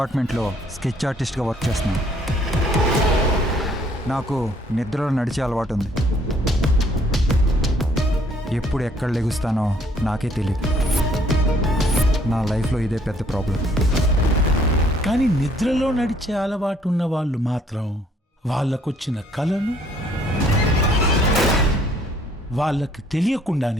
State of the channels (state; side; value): normal; both; correlation 0.63